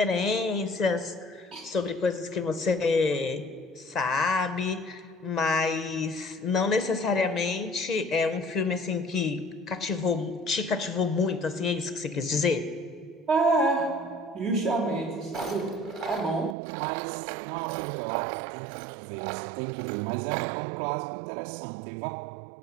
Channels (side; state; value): left; drops out; at 16.6 s